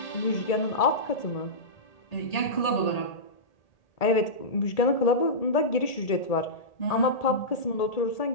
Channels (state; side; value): late; right; 1.8 ms